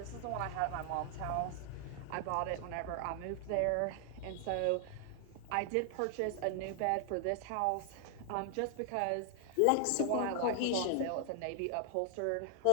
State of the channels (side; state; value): both; different; correlation 0.00